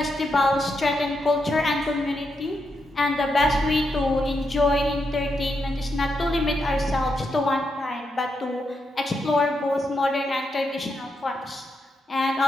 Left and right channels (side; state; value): both; normal; correlation 0.83